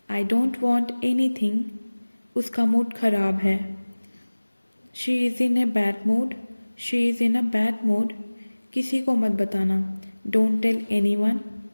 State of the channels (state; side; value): inverted; both; correlation -1.00